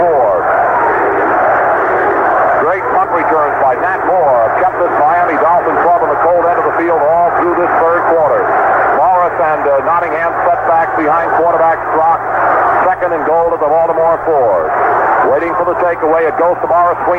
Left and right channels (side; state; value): both; identical; correlation 1.00